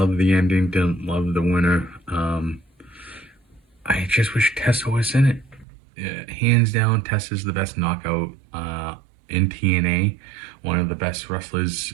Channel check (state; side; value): drops out; left; at 5.7 s